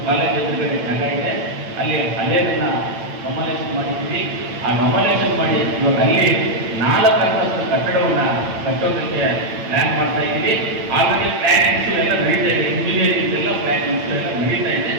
ಕಾಲೇಜ್ ಎದುರುಗಡೆ ಜಾಗ ಇದೆ, ಅಲ್ಲಿ ಹಳೆಯದನ್ನ ಕಮಲೇಷನ್ ಮಾಡಿದ್ದೀವಿ. ಆ ಕಮಲೇಷನ್ ಮಾಡಿ ಇವಾಗ ಅಲ್ಲಿ 4 ಅಂತಸ್ತು ಕಟ್ಟಡವನ್ನು ಕಟ್ಟೋದಕ್ಕೆ ಪ್ಲ್ಯಾನ್ ಮಾಡ್ತಾ ಇದ್ದೀವಿ. ಆಲ್ರೆಡಿ ಪ್ಲ್ಯಾನಿಂಗ್ಸು ಎಲ್ಲ ನಡೀತಾ ಇದೆ. ಇಂಜಿನಿಯರಿಂಗ್ ಎಲ್ಲ ಪ್ಲ್ಯಾನಿಂಗ್ಸು ಎಲ್ಲ ನಡೀತಾ ಇದೆ.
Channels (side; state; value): left; late; 8.9 ms